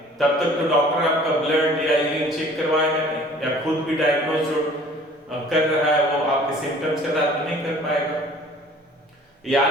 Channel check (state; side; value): normal; both; correlation 0.51